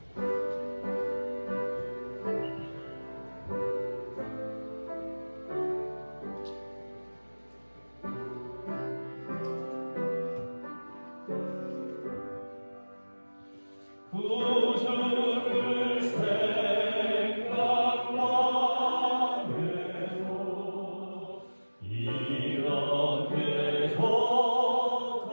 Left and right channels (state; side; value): inverted; both; correlation -1.00